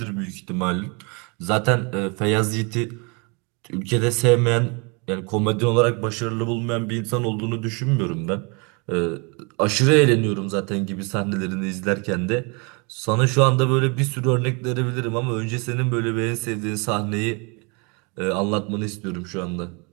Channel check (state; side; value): quieter; left; 31.8 dB